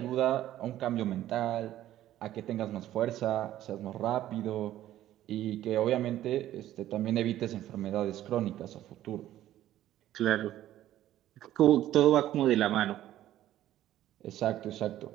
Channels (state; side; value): quieter; left; 13.2 dB